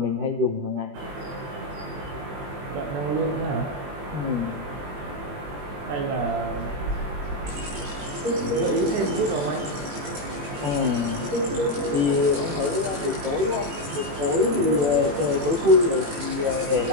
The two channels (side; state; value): left; late; 21 ms